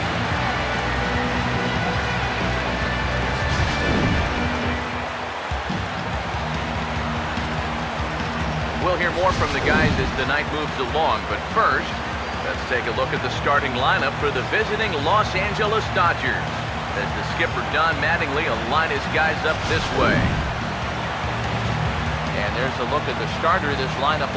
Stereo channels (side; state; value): both; identical; correlation 1.00